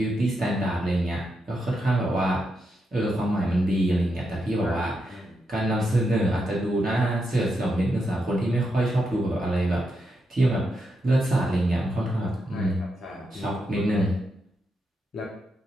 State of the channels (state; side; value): normal; both; correlation 0.84